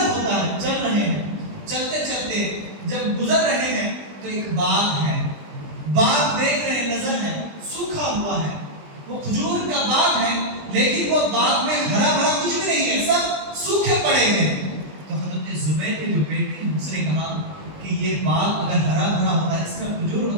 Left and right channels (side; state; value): left; late; 20 ms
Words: ہوتا ہے, چل رہے ہیں, چلتے چلتے جب گزر رہے ہیں تو ایک باغ ہے, باغ دیکھ رہے ہیں, نظر ہے, سوکھا ہوا ہے, وہ کھجور کا باغ ہے, لیکن وہ باغ میں ہرا بھرا کچھ بھی نہیں ہے, سب سوکھے پڑے ہیں. تو حضرت زبیر کے جو بیٹے ہیں اس نے کہا کہ یہ باغ اگر ہرا بھرا ہوتا, اس میں کھجور